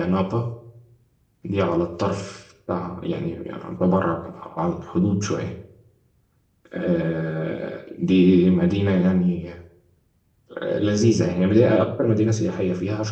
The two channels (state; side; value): identical; both; correlation 1.00